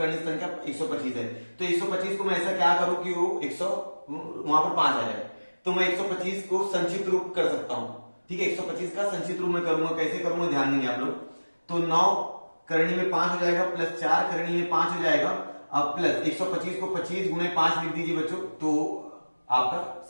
संख्या 125 है। तो 125 को मैं ऐसा क्या करूं कि वो 100 वहां पर 5 आ जाए। तो मैं 125 को संचित रूप कर सकता हूं। ठीक है, 125 का संचित रूप में करूंगा, कैसे करूंगा ध्यान देंगे आप लोग। तो 9 करनी में 5 हो जाएगा प्लस 4 करनी में 5 हो जाएगा। अब प्लस 125 को 25 गुणे 5 लिख दीजिए बच्चों, तो आपका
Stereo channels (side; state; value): both; inverted; correlation -1.00